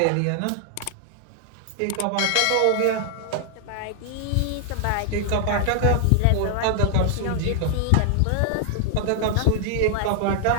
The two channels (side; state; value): both; different; correlation 0.00